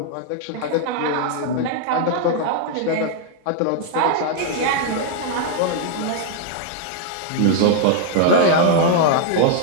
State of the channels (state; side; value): different; both; correlation 0.00